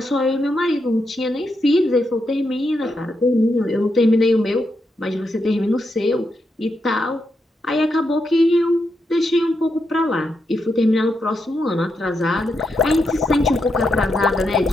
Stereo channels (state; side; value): normal; both; correlation 0.83